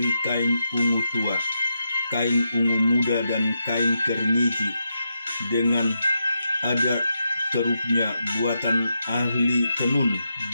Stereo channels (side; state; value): both; inverted; correlation -0.85